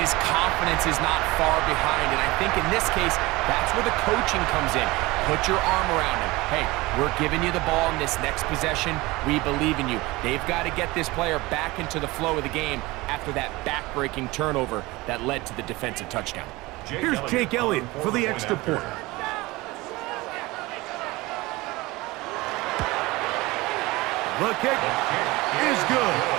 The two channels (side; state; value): left; quieter; 21.3 dB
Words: confidence is not far behind? And I think in this case, that's where the coaching comes in. Put your arm around him. Hey, we're giving you the ball in this next possession. We believe in you. They've got to get this player back into the flow of the game after that back-breaking turnover that led to the defensive touchdown. Here's Jake Elliott for the extra point. The kick is good.